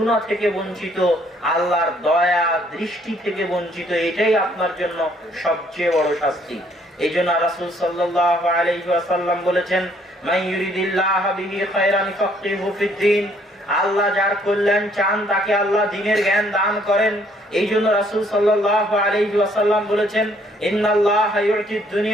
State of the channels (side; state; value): both; normal; correlation 0.65